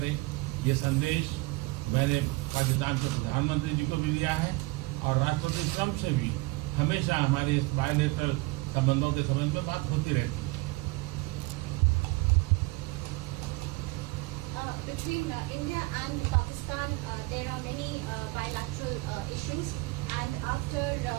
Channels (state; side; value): quieter; left; 22.7 dB